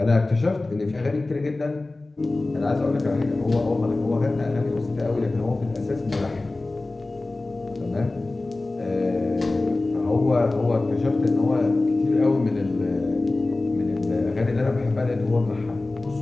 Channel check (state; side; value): quieter; right; 3.1 dB